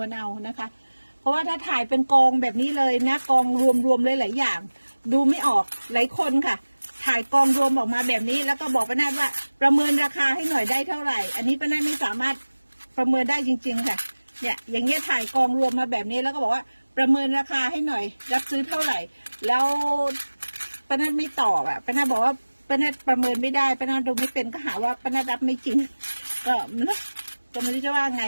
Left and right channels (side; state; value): both; inverted; correlation -1.00